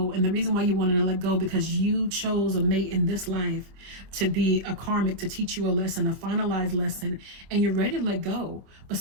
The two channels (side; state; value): left; late; 26 ms